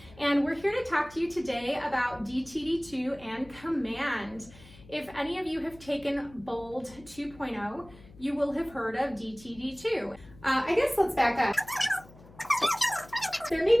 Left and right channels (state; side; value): noise; left; hum, 22 dB below the sound